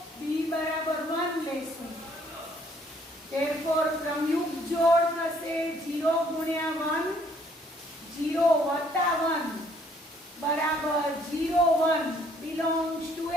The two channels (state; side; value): normal; both; correlation 0.64